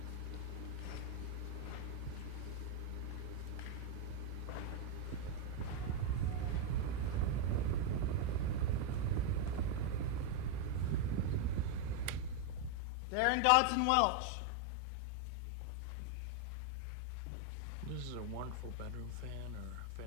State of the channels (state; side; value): different; both; correlation 0.01